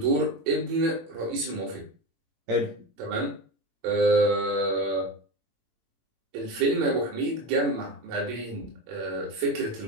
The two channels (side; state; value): left; late; 18 ms